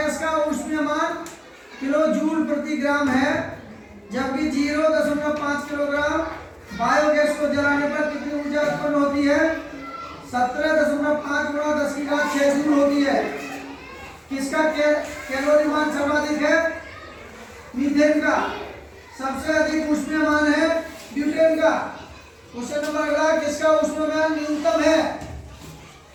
का ऊष्मीय मान किलो जूल प्रति ग्राम है, जबकि 0.5 किलोग्राम बायोगैस को जलाने पर कितनी ऊर्जा उत्पन्न होती है? 17.5 गुणा 10⁶ जूल होती है। किसका कैलोरी मान सर्वाधिक है? मीथेन का। सबसे अधिक ऊष्मीय मान है ब्यूटेन का। क्वेश्चन नंबर अगला, किसका ऊष्मीय मान न्यूनतम है?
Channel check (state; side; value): identical; both; correlation 1.00